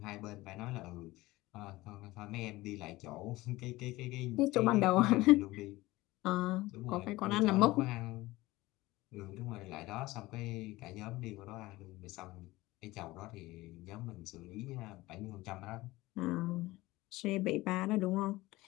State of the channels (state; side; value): quieter; right; 19.2 dB